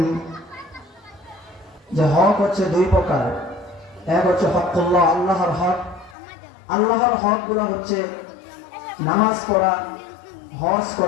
যে হক হচ্ছে দুই প্রকার। এক হচ্ছে হকুল্লাহ, আল্লাহর হক। আল্লাহর হক গুলো হচ্ছে নামাজ পড়া, হজ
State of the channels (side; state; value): right; drops out; at 6.2 s